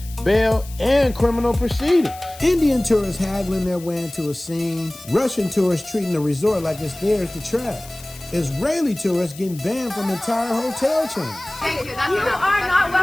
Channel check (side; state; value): left; noise; hiss, 18 dB below the sound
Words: bail, and criminal proceedings. Indian tourists haggling their way into a scene. Russian tourists treating the resort like it's theirs to trash. Israeli tourists getting banned from entire hotel chains. Thank you. You are not